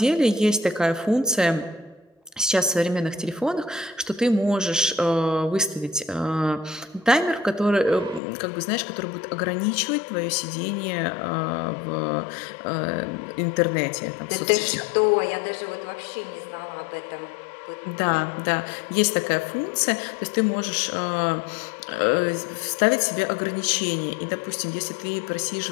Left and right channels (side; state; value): right; drops out; at 8.2 s